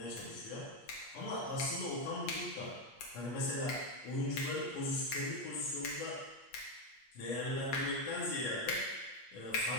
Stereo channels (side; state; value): right; late; 8.4 ms